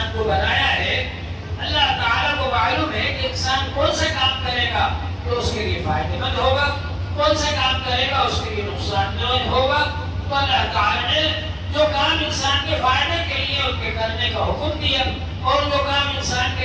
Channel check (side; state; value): both; identical; correlation 1.00